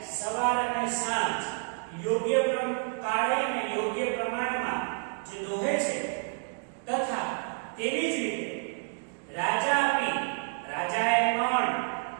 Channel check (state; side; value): silent; left; 58 dB below the other